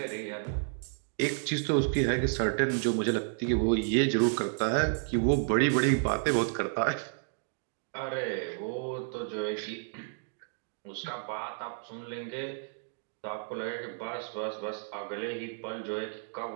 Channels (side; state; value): left; silent; digital silence